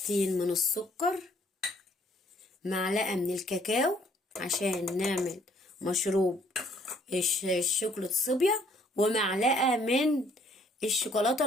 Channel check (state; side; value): normal; both; correlation 0.63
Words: من السكر، معلقة من الكاكاو عشان نعمل مشروب الشوكولاتة الصبية، ومعلقة من الشوكولاتة